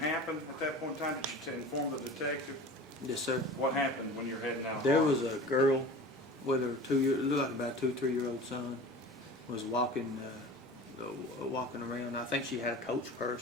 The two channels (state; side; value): normal; both; correlation 0.37